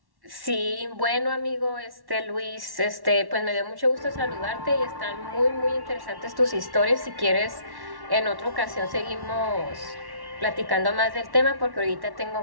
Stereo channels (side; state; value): left; late; 1.1 ms